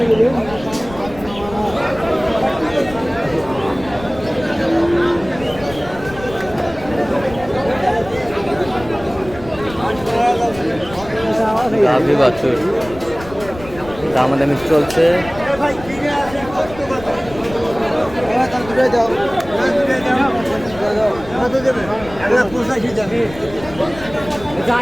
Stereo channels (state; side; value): noise; left; rumble, 16 dB below the sound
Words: গাভী বাছুর দামাদামি চলছে।